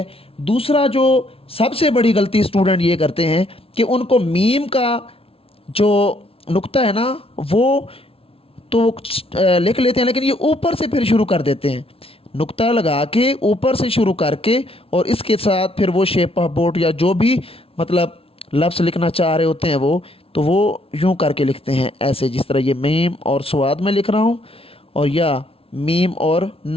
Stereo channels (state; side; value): late; right; 0.27 ms